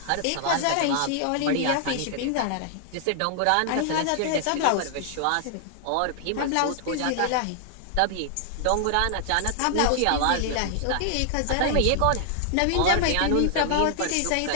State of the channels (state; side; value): different; both; correlation 0.00